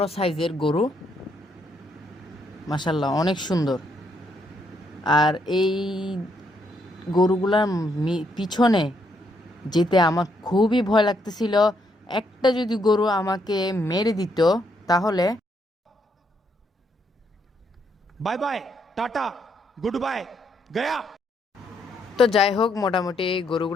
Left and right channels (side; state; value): both; normal; correlation 0.75